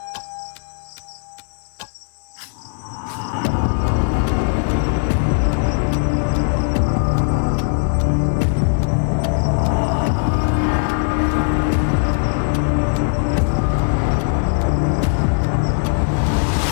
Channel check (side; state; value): right; silent; 66 dB below the other